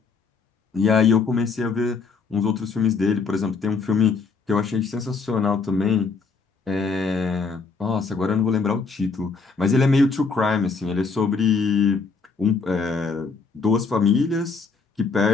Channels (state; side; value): quieter; right; 4.7 dB